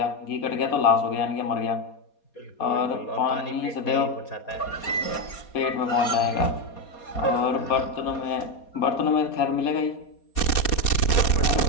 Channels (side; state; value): right; late; 4.2 ms